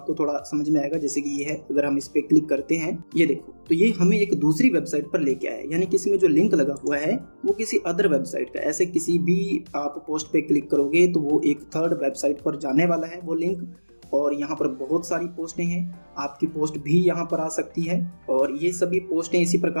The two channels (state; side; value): inverted; both; correlation -1.00